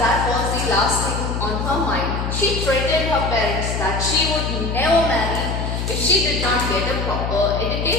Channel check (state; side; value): noise; left; hum, 2 dB below the sound